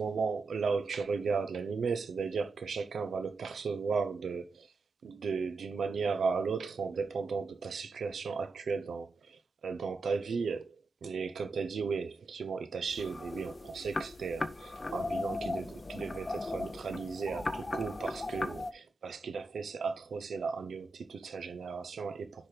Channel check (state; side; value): quieter; left; 3.7 dB